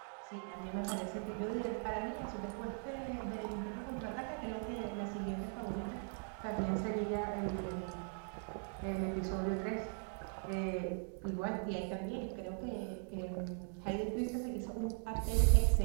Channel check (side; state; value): left; silent; 51 dB below the other